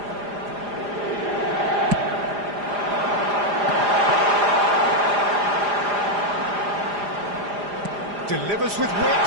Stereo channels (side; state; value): left; late; 4.9 ms